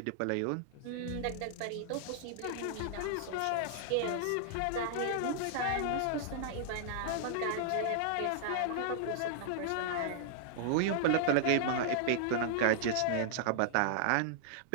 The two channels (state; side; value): different; both; correlation -0.01